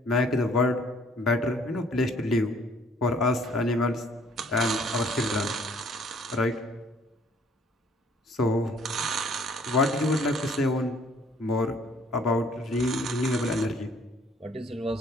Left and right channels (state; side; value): normal; both; correlation 0.59